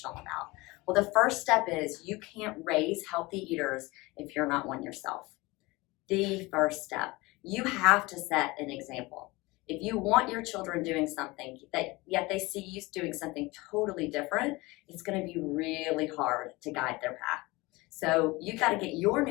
about. Well, the first step is you can't raise healthy eaters if you're not one yourself. The first step, you have to set an example. If you want your children doing something that yet they see you doing something totally different, it's going to be really hard to guide their path. So you got to get your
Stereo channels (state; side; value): quieter; right; 22.4 dB